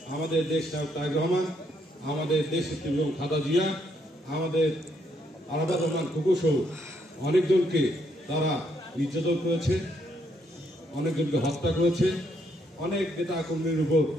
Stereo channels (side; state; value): both; normal; correlation 0.73